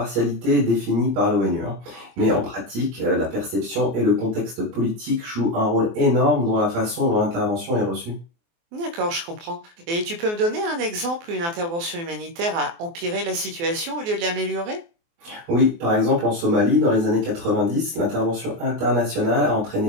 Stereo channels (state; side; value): late; left; 24 ms